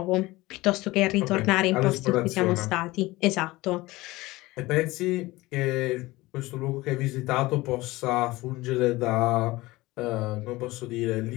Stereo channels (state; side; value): quieter; right; 19.9 dB